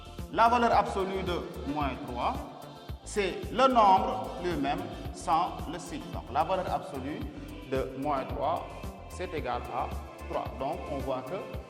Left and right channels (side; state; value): both; identical; correlation 1.00